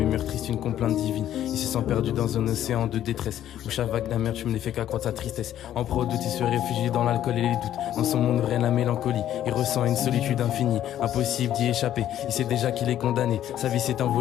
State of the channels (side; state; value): right; quieter; 11.6 dB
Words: tristes, une complainte divine. Il se sent perdu dans un océan de détresse, où chaque vague d'amertume ne fait qu'accroître sa tristesse. En proie au doute, il se réfugie dans l'alcool et les doutes. Dans son monde règne la mélancolie, il ressent une solitude infinie. Impossible d'y échapper, il sait déjà qu'il est condamné. Sa vie s'est